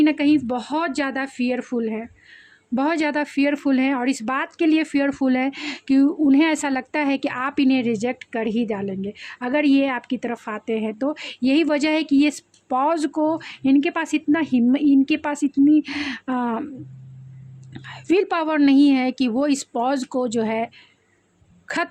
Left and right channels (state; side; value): identical; both; correlation 1.00